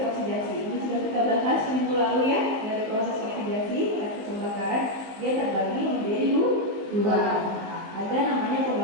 oksidasi. Ini sudah kita bahas minggu lalu ya. Dari proses oksidasi, reaksi pembakaran dia terbagi menjadi dua. Ada namanya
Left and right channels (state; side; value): late; left; 18 ms